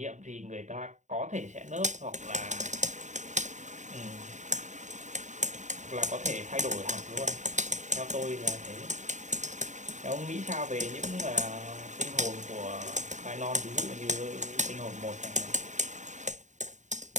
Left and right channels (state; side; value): late; left; 0.35 ms